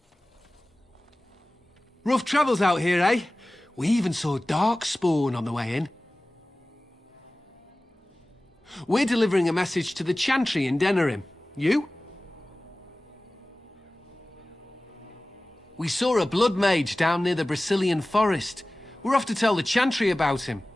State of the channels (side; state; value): both; normal; correlation 0.97